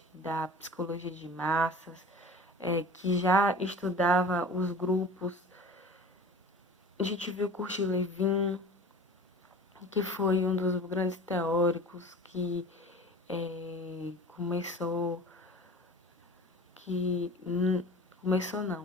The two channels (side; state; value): both; normal; correlation 0.40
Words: da psicologia de massas, que já estudava os grupos. A gente viu Kurt Lewin, que foi um dos grandes teóricos que